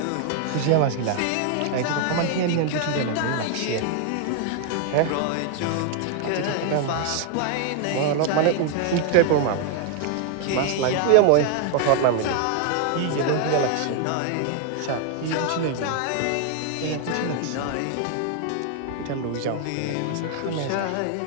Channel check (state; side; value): different; both; correlation 0.00